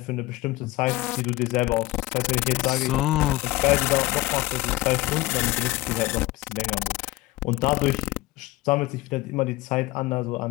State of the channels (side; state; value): right; quieter; 19.2 dB